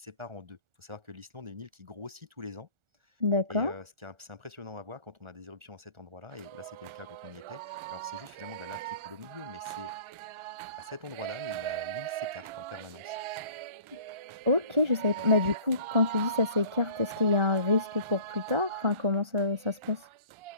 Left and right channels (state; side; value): late; left; 1.4 ms